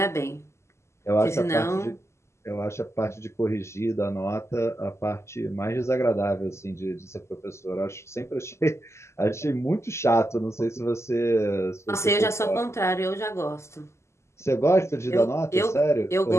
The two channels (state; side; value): late; right; 0.13 ms